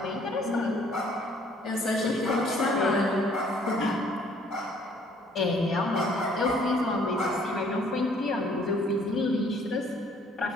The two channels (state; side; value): normal; both; correlation 0.60